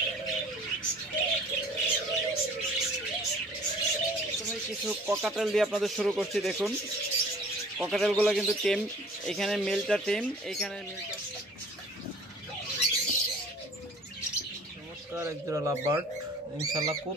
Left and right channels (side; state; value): both; normal; correlation 0.50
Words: কিছু ককাটেল দিয়ে আপনাদের শুরু করছি। দেখুন ককাটেলগুলো কিন্তু টেম, এখানে মেলটা টেম, এখানে মেলটা চমৎকার এক জোড়া লাভবার্ড, ইনশাল্লাহ খুব